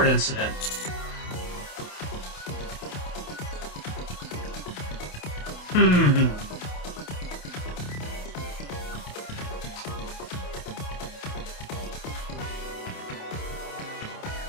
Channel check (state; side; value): late; right; 28 ms